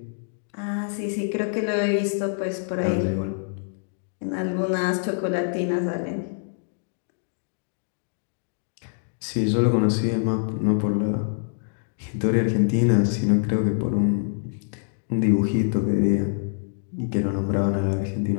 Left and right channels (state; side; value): silent; right; digital silence